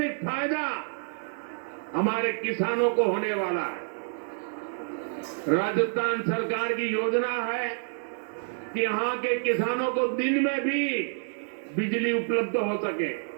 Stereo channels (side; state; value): left; silent; 59 dB below the other